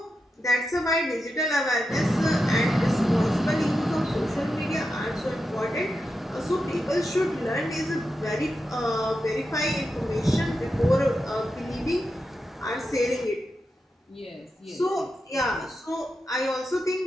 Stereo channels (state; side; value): normal; both; correlation 0.88